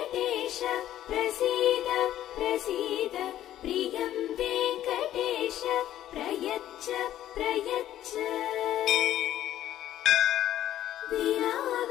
प्रसीद प्रसीद प्रियं वेङ्कटेश प्रयच्छ प्रयच्छ। विना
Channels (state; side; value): quieter; right; 12.5 dB